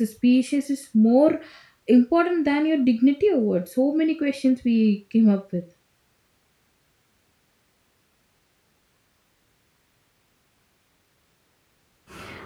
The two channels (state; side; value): identical; both; correlation 1.00